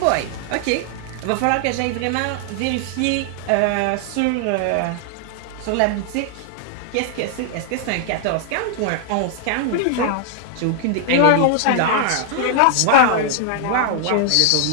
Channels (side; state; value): both; different; correlation 0.00